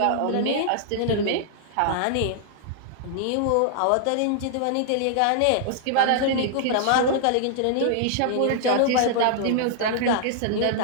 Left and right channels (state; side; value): different; both; correlation -0.01